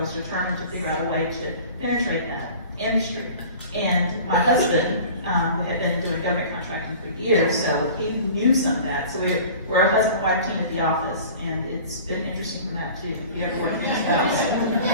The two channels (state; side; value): inverted; both; correlation -0.42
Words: determined to figure out a way to penetrate that industry. And my husband, we had been doing government contracting for years, so he knew some of that. So we're a husband-wife team at the office, and it's been interesting from that too. If you ever work with your spouse.